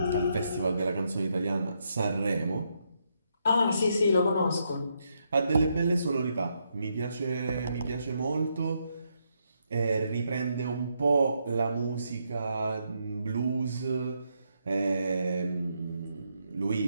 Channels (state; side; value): inverted; both; correlation -0.79